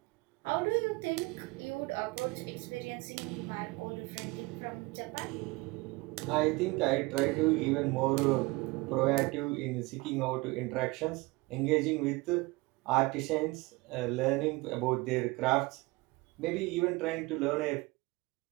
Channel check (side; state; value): left; quieter; 23.8 dB